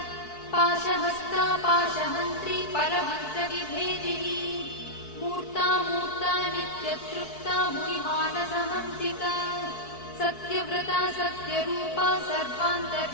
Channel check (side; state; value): right; late; 4.6 ms